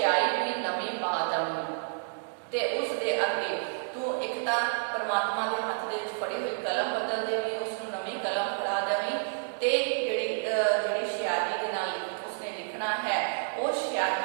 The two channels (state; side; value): silent; left; digital silence